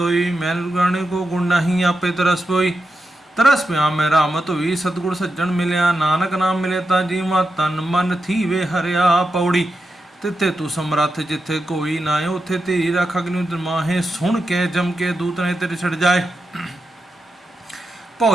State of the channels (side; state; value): both; normal; correlation 0.88